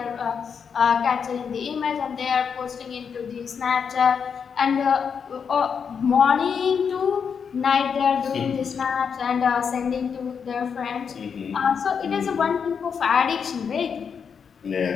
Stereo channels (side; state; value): right; quieter; 6.6 dB